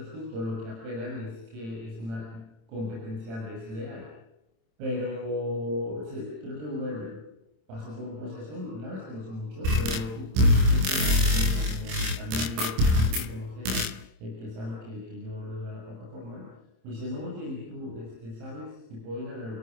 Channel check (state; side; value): late; left; 26 ms